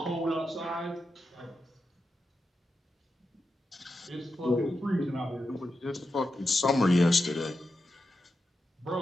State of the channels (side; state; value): both; normal; correlation 0.89